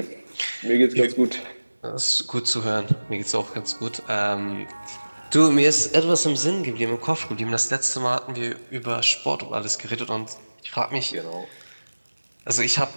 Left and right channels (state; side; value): inverted; both; correlation -1.00